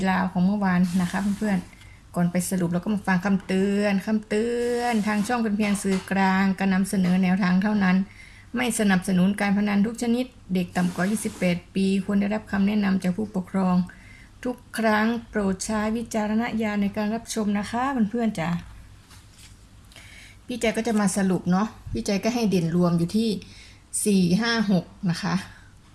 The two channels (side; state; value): both; identical; correlation 1.00